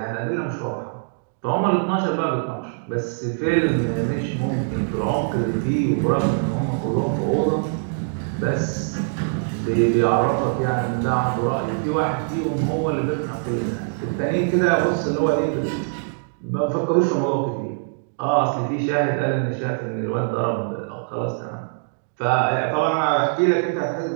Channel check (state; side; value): silent; left; digital silence